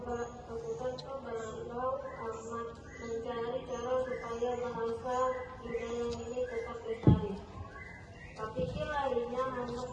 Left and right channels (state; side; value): identical; both; correlation 1.00